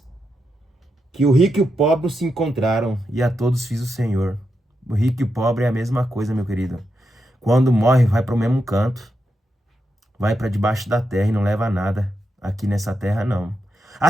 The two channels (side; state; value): both; normal; correlation 0.85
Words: que o rico e o pobre se encontraram e a todos fiz o Senhor. O rico e o pobre é a mesma coisa, meu querido. Quando morre, vai para o mesmo canto, vai para debaixo da terra e não leva nada aqui nessa terra, não. A